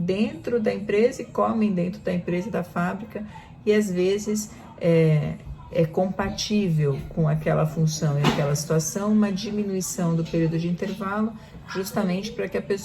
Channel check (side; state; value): both; identical; correlation 1.00